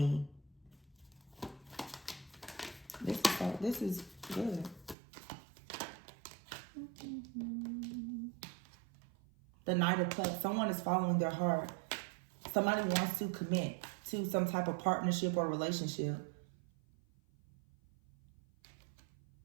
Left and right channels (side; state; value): left; drops out; at 5.0 s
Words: This is good. The Knight of Cups. Someone is following their heart. Somebody wants to commit to some type of partnership or relationship.